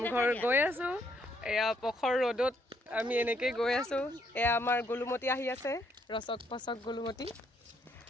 গৈ আছো এয়া পখৰ ৰ'দত আমি এনেকৈ গৈ আছো এয়া আমাৰ গোলুমতি আহি আছে ৰচক পচক গোলুমতি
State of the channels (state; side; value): normal; both; correlation 0.71